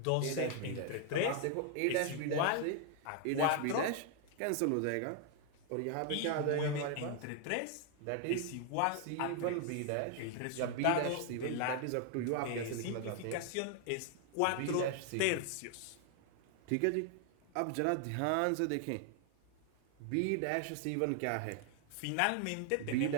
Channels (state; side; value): different; both; correlation 0.00